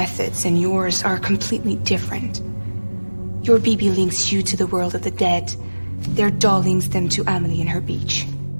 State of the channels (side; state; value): both; inverted; correlation -1.00